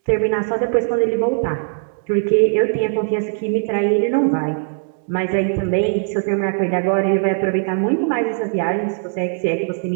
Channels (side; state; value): left; silent; digital silence